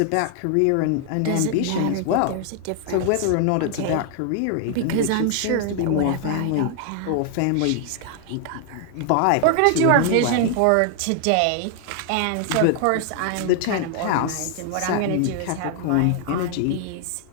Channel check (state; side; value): different; both; correlation 0.00